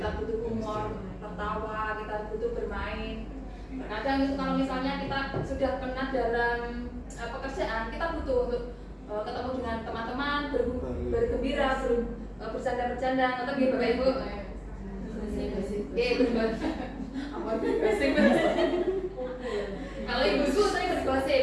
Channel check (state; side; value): identical; both; correlation 1.00